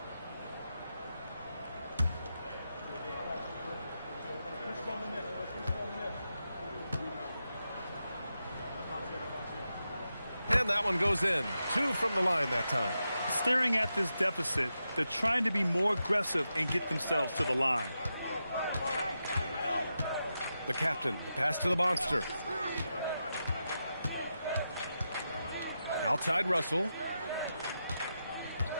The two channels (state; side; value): inverted; both; correlation -0.88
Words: And that one goes in. 2 from the line that time. Staring at this deficit, they're trying to be more aggressive and get themselves to the line. The captain, the pass to the monster. Outside Russell.